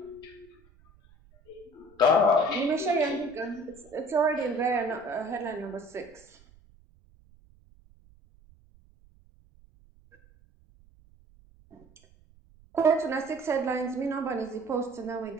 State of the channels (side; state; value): right; noise; rumble, 28 dB below the sound